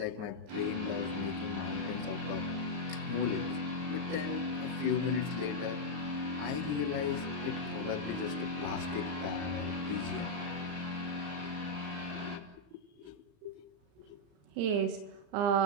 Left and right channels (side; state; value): left; late; 35 ms